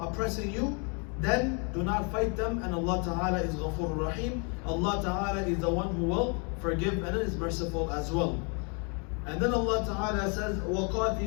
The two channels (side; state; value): right; quieter; 36.1 dB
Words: you, then do not fight them, and Allah Ta'ala is Ghafur Rahim. Allah Ta'ala is the one who will forgive and is merciful as well. And then Allah Ta'ala says,